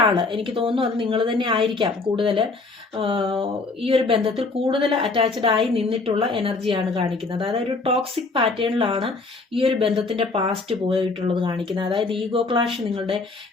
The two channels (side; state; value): right; quieter; 3.7 dB